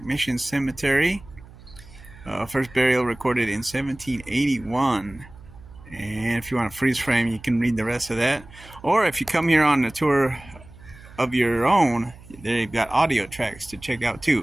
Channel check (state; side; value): noise; right; hum, 21 dB below the sound